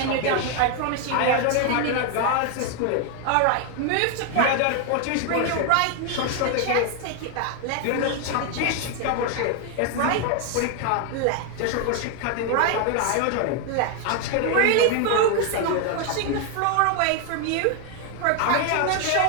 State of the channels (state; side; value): different; both; correlation 0.01